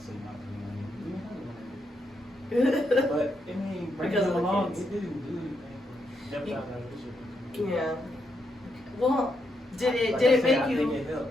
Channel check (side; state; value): both; normal; correlation 0.80